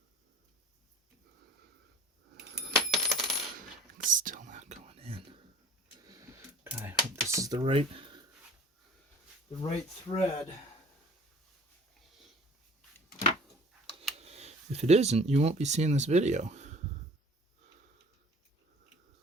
It's still not going in. God, I hope this is the right thread. If it isn't, you won't be seeing this video.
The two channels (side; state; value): both; normal; correlation 0.47